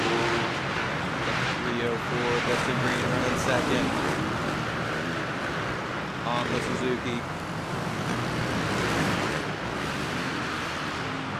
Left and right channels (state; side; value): identical; both; correlation 1.00